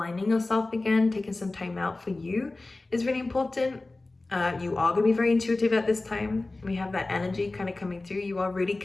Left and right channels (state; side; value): quieter; right; 3.1 dB